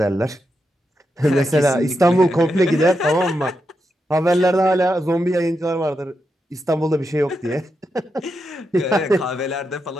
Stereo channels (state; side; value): normal; both; correlation 0.85